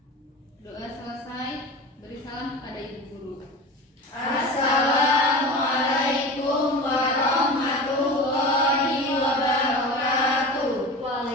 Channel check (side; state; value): both; normal; correlation 0.32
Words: Doa selesai, beri salam kepada Ibu Guru. Assalamualaikum warahmatullahi wabarakatuh.